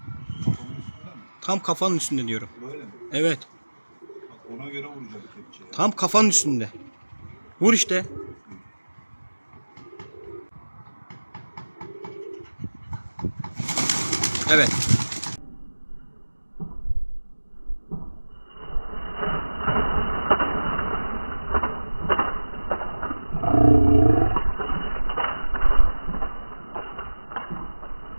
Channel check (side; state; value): both; inverted; correlation -1.00